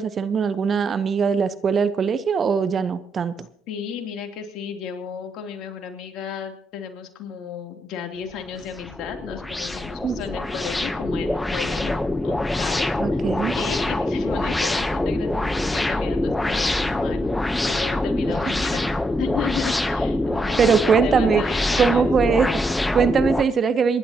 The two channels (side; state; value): both; normal; correlation 0.81